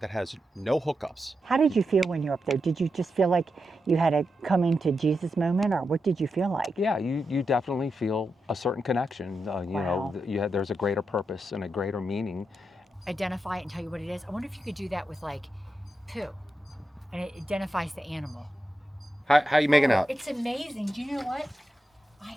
has no hookups. How did you feel when you were up there? Did you just feel like you had a coming to Jesus moment, or what did you feel like? Yeah, you definitely feel a certain connection. Wow. There's a greater purpose and a greater meaning. Identify it and tell you what it is. I wonder if you could do that with like poo, and it identifies the animal. How you making out? It's amazing. Do you know what?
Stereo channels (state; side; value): normal; both; correlation 0.87